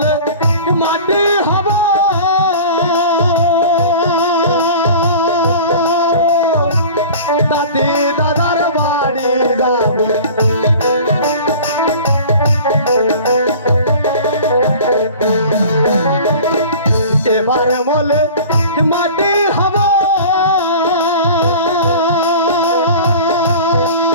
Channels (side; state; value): both; inverted; correlation -0.40